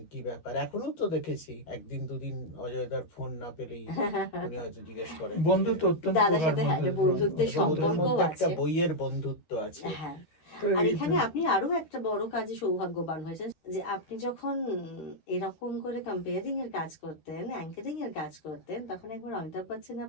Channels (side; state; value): right; late; 13 ms